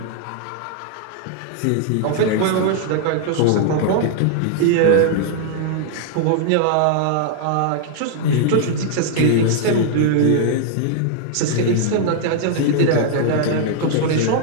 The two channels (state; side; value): different; both; correlation 0.00